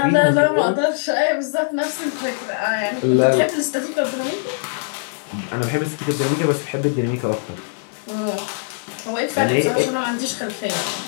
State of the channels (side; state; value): right; silent; 65 dB below the other